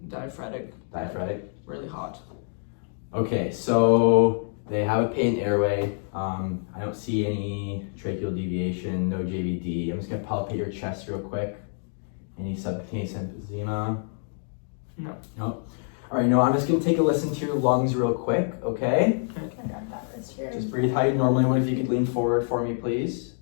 Diaphoretic. Diaphoretic? Really hot. Okay, so they have a patent airway. I don't see any tracheal deviation, no JVD. I'm just gonna palpate your chest real quick. Any subcutaneous emphysema? No. No. All right, no, I'm just gonna take a listen to your lungs real quick, okay? I got that wrist here. Just breathe how you normally would. If you could lean forward for me, please.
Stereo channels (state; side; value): silent; right; digital silence